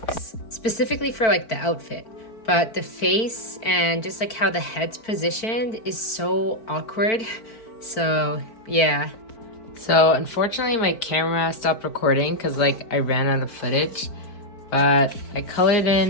specifically for like the outfit, but the face and just like how the head's positioned is so awkward. So yeah. So unfortunately my camera stopped recording because like I ran out of footage, but I colored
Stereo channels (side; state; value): right; late; 4.5 ms